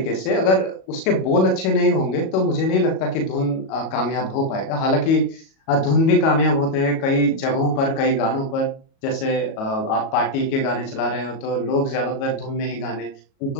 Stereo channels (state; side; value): late; right; 37 ms